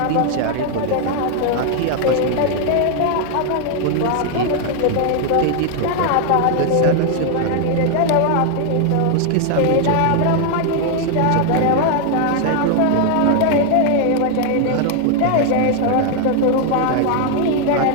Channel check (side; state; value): both; different; correlation 0.00